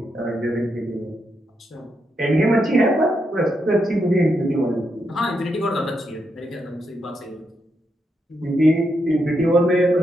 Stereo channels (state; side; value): normal; both; correlation 0.82